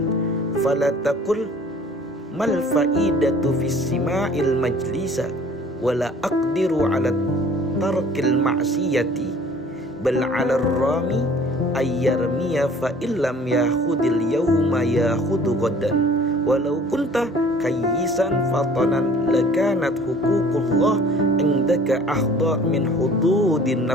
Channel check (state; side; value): normal; both; correlation 0.51